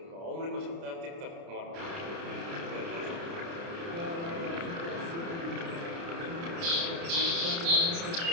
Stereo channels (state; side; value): late; left; 30 ms